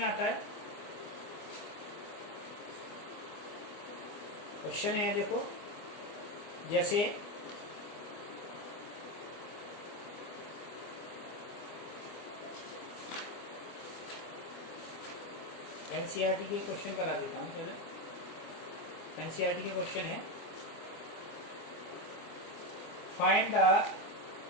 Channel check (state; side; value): late; right; 24 ms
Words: आता है. क्वेश्चन है, देखो जैसे एनसीईआरटी के क्वेश्चन करा देता हूं पहले. एनसीईआरटी के क्वेश्चन है, find the